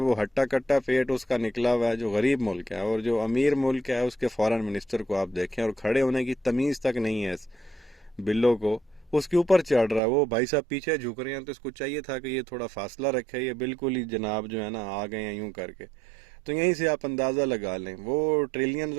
ہٹا کٹا پیٹ اس کا نکلا ہوا ہے، جو غریب ملک ہے، اور جو امیر ملک ہے اس کے فورن منسٹر کو آپ دیکھیں، اور کھڑے ہونے کی تمیز تک نہیں ہے اس بلو کو، اس کے اوپر چڑھ رہا ہے۔ وہ بھائی صاحب پیچھے جھک رہے ہیں تو اس کو چاہیے تھا کہ یہ تھوڑا فاصلہ رکھے، یہ بالکل ہی جناب جو ہے نا آ گئے ہیں یوں کر کے۔ تو یہیں سے آپ اندازہ لگا لیں، وہ ٹریلینز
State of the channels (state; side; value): drops out; left; at 10.0 s